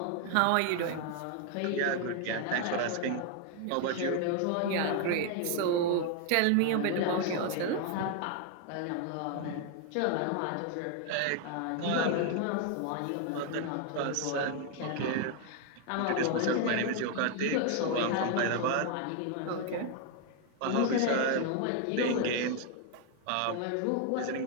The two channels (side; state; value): both; different; correlation 0.01